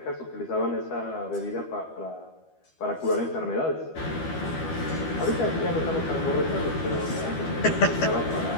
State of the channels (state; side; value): late; right; 12 ms